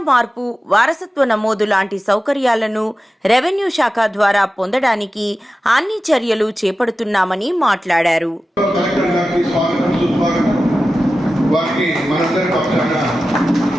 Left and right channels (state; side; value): normal; both; correlation 0.94